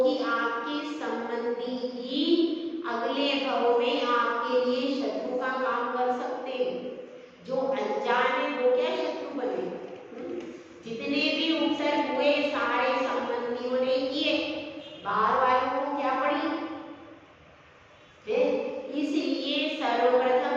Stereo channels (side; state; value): both; identical; correlation 1.00